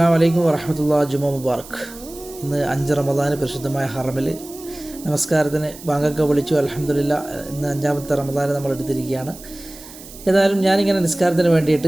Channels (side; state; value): right; noise; hiss, 17 dB below the sound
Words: അലൈക്കും വറഹ്മത്തുള്ളാഹി ജുമാ മുബാറക്. ഇന്ന് 5 റമദാന് പരിശുദ്ധമായ ഹറമിൽ നമസ്കാരത്തിന് ബാങ്കൊക്കെ വിളിച്ചു. അൽഹംദുലില്ലാഹ്, ഇന്ന് 5-ാമത്തെ റമദാന് നമ്മൾ എടുത്തിരിക്കുകയാണ്. ഏതായാലും ഞാനിങ്ങനെ നിസ്കാരത്തിന്